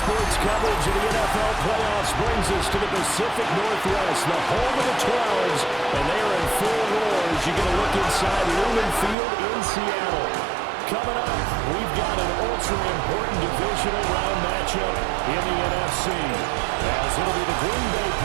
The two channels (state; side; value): drops out; left; at 9.2 s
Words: coverage of the NFL playoffs brings us to the Pacific Northwest, the home of the 12s, and they are in full roar as you get a look inside Lumen Field in Seattle. Coming up, we've got an ultra-important divisional round matchup in the NFC, as it'll be the Green Bay